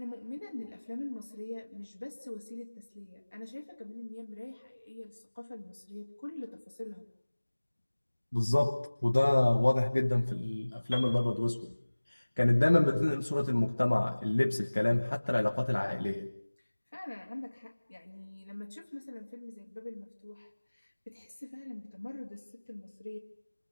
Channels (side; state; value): both; inverted; correlation -1.00